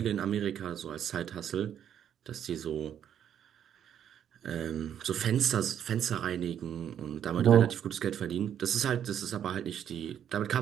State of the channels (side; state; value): left; quieter; 9.4 dB